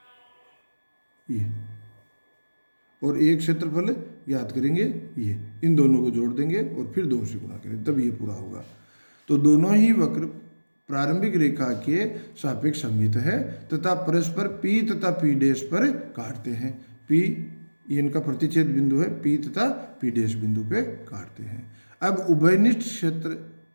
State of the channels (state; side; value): inverted; both; correlation -1.00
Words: और एक क्षेत्रफल ज्ञात करेंगे ये। इन दोनों को जोड़ देंगे और फिर 2 से गुणा करें, तब ये पूरा होगा। तो दोनों ही वक्र प्रारंभिक रेखा के सापेक्ष सममित है तथा परस्पर P तथा P डैश पर काटते हैं। P ये इनका प्रतिच्छेद बिंदु है, P तथा P डैश बिंदु पे काटते हैं। अब उभयनिष्ठ